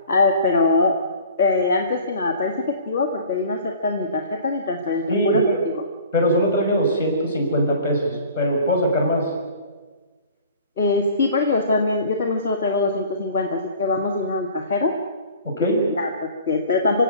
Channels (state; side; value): inverted; both; correlation -0.47